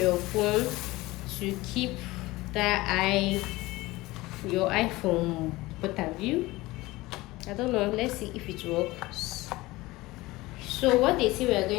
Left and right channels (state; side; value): quieter; right; 19.9 dB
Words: your phone to keep your iPhone point of view, I don't know, let's see if it works. So what they say we are